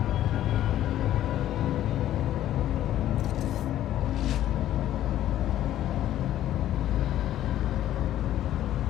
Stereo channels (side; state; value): right; quieter; 12.6 dB